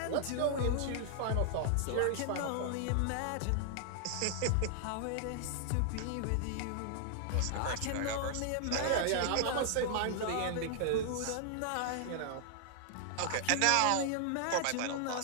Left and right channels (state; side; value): different; both; correlation 0.00